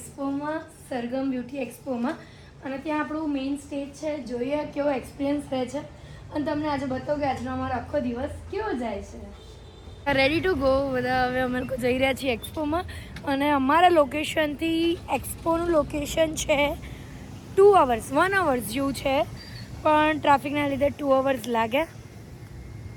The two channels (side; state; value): both; identical; correlation 1.00